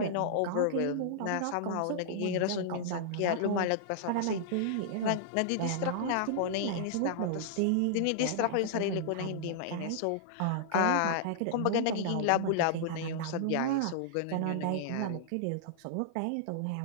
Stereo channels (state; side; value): different; both; correlation -0.01